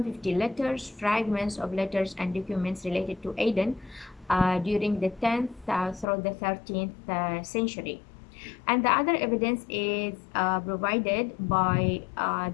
letters, fragments of letters and documents related to Aden during the 10th through the 13th century. And the other evidence is provided by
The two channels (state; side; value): drops out; right; at 6.1 s